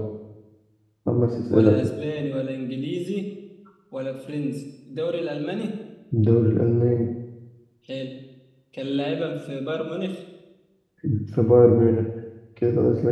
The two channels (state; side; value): identical; both; correlation 1.00